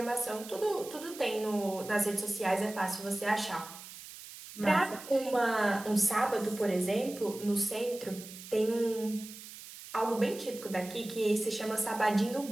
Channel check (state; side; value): noise; right; hiss, 14 dB below the sound